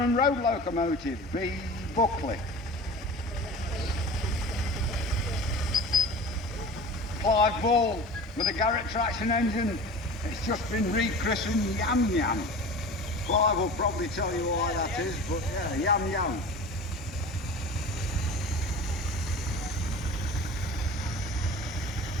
road locomotive, B Buckley. Clive Ball with a Garrett traction engine. It's just been rechristened Yam Yam. Clive will probably tell you why that is, but yeah, Yam Yam.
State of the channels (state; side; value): normal; both; correlation 0.37